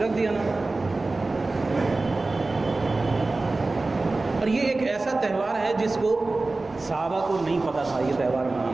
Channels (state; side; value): quieter; left; 3.3 dB